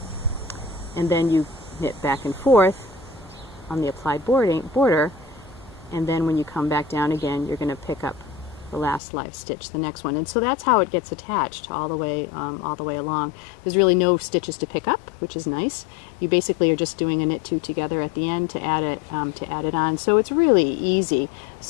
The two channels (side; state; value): right; drops out; at 9.0 s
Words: And then you knit back and forth on the applied border, and then when you come back down again, you're going to pick up the last live stitch, the next one. And so that's how it gets attached all the way along. There's really no stitches to pick up, which is nice. You basically are just doing a knit 2 together at the end to add it on. So it's really easy.